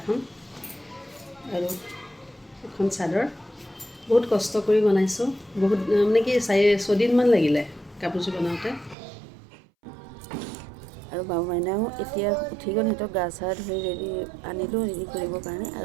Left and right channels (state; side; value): drops out; left; at 9.0 s